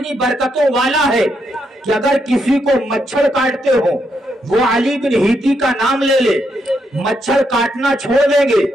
برکتوں والا ہے کہ اگر کسی کو مچھر کاٹتے ہو وہ علی بن ہیتی کا نام لے لے، مچھر کاٹنا چھوڑ دیں گے۔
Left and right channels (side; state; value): both; normal; correlation 0.79